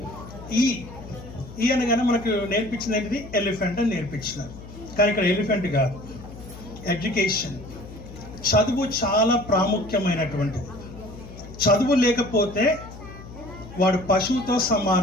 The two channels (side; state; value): left; noise; hum, 15 dB below the sound